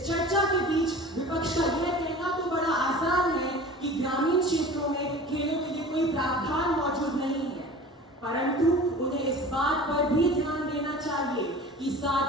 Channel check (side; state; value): both; normal; correlation 0.40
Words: चर्चा के बीच विपक्ष का यह कहना तो बड़ा आसान है कि ग्रामीण क्षेत्रों में खेलों के लिए कोई प्रावधान मौजूद नहीं है, परंतु उन्हें इस बात पर भी ध्यान देना चाहिए कि